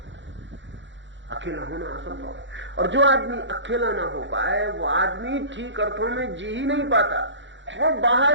अकेला होना असंभव है। और जो आदमी अकेला ना हो पाए वो आदमी ठीक अर्थों में जी ही नहीं पाता। वो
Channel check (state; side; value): late; left; 0.54 ms